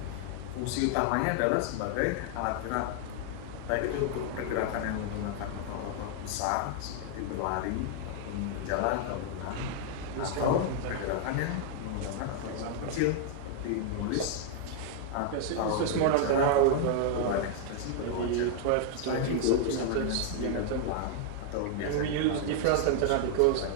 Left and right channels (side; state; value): both; different; correlation 0.00